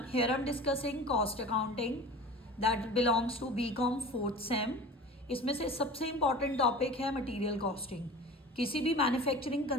here I'm discussing cost accounting that belongs to BCom 4th same. इसमें से सबसे important topic है material costing. किसी भी मैन्युफैक्चरिंग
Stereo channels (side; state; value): both; normal; correlation 0.37